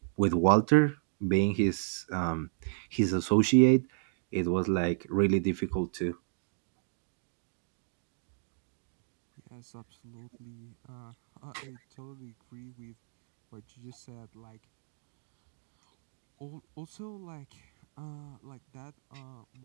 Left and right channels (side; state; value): left; silent; digital silence